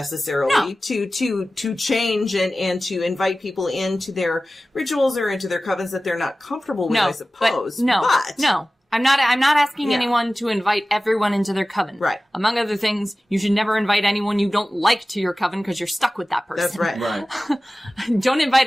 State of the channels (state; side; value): normal; both; correlation 0.96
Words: to change and to invite people into their rituals or into their covens that they're not comfortable with, I suppose. No. I'm not asking Yeah. anyone to invite everyone into their coven. Right. Among other things, you should never invite anyone you don't like to your coven because you're stuck with that person. That's right. Right. Don't invite